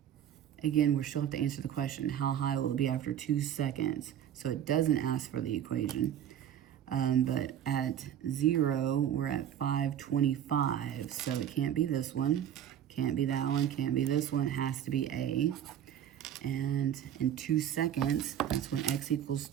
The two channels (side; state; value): left; quieter; 10.2 dB